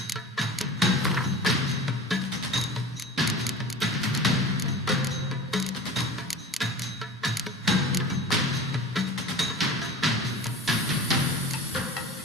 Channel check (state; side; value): normal; both; correlation 0.37